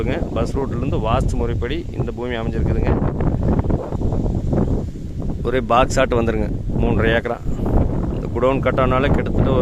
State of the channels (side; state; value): both; identical; correlation 1.00